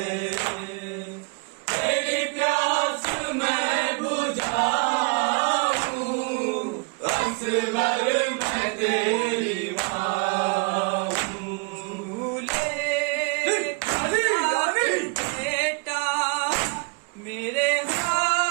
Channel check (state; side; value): quieter; left; 33.3 dB